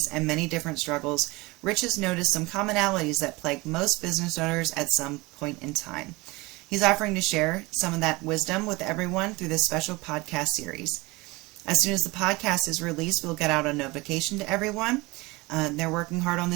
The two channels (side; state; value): left; quieter; 23.2 dB